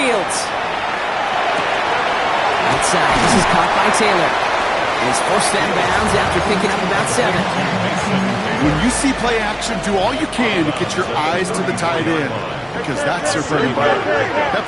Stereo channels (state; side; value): identical; both; correlation 1.00